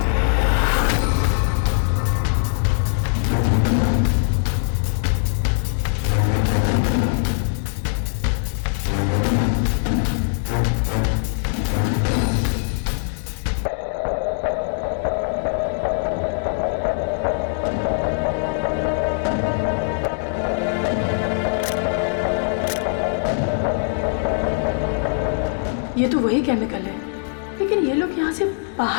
ये तो वही केमिकल है, लेकिन ये लोग यहाँ से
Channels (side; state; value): right; silent; 65 dB below the other